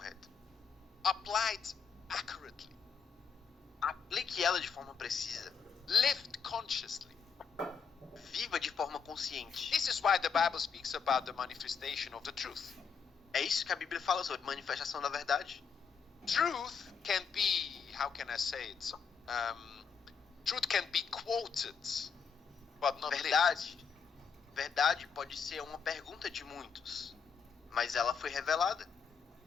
applied accurately, Aplique ela de forma precisa. lived consciously. Viva de forma consciente. This is why the Bible speaks about the manifestation of the truth. É isso que a Bíblia fala sobre manifestação da verdade. Truth can be, how can I say it? Truth can be quoted, but not lived. Verdade. Verdade pode ser uma pergunta de muitos, mas ela foi revelada.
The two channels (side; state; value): right; quieter; 6.1 dB